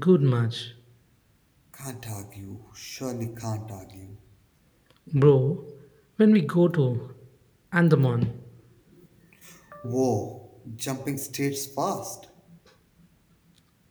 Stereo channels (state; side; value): identical; both; correlation 1.00